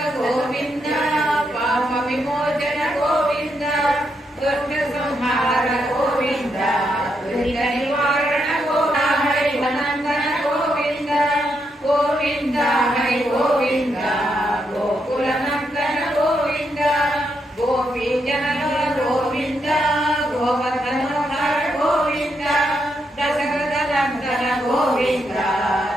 గోవింద పాప విమోచన గోవింద దుర్గ సంహార గోవింద దురిత నివారణ హరి నందన గోవింద గోవింద హరి గోవింద గోకుల నందన గోవింద గోపీజన గోవింద గోవర్ధనోధర గోవింద దశరథ నందన గోవింద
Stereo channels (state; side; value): normal; both; correlation 0.80